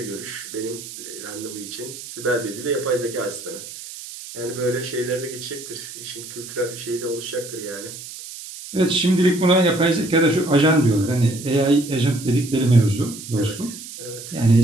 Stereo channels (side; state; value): right; noise; hiss, 12 dB below the sound